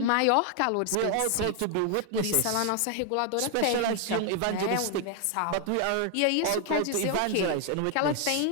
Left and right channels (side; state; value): both; different; correlation 0.00